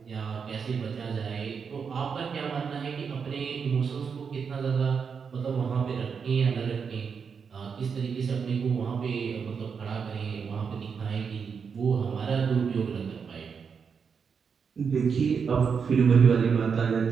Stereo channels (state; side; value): quieter; left; 6.2 dB